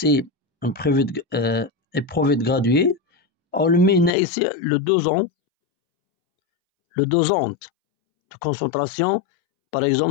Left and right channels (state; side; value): drops out; right; at 4.1 s